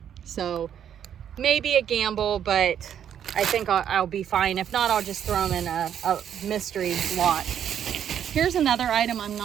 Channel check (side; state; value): left; quieter; 9.3 dB